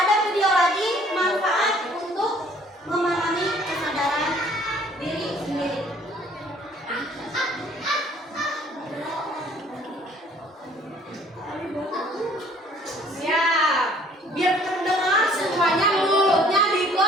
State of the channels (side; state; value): both; normal; correlation 0.57